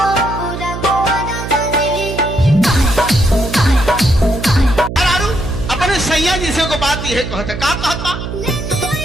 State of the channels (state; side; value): noise; right; hum, 7 dB below the sound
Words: सैया जी से को बात ये कहता का कहता।